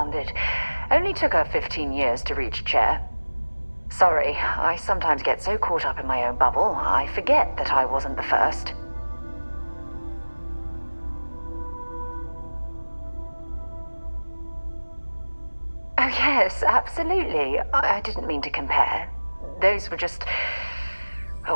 Only took her 15 years to reach chair. Sorry, I sometimes get so caught up in my own bubble, I forget that I wasn't the first. Oh yes, absolutely. I didn't mean to compare. Those were just... oh,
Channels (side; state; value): both; inverted; correlation -1.00